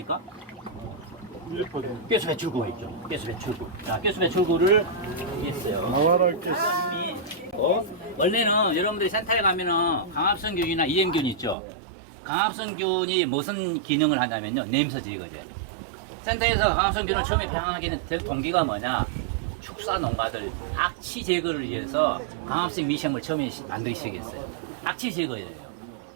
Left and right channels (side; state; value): left; drops out; at 11.6 s